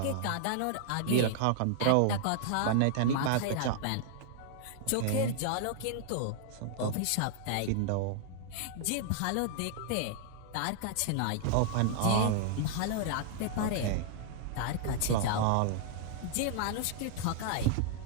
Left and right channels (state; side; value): different; both; correlation -0.01